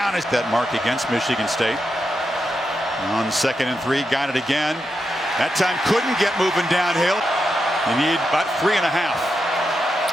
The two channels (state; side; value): normal; both; correlation 0.86